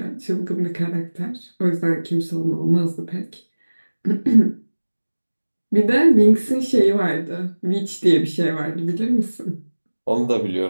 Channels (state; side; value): inverted; both; correlation -1.00